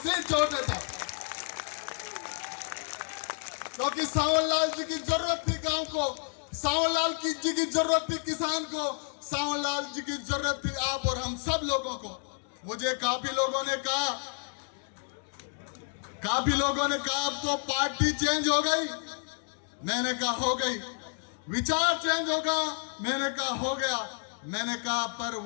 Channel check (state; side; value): silent; right; 58 dB below the other